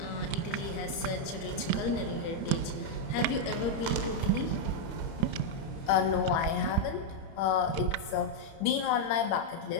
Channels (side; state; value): right; late; 30 ms